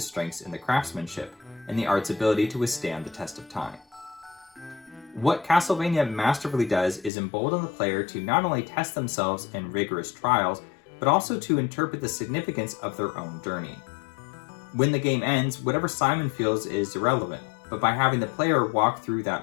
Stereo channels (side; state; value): right; drops out; at 7.1 s